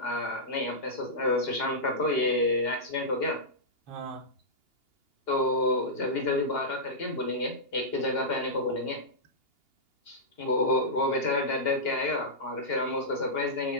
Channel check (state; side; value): late; right; 2.8 ms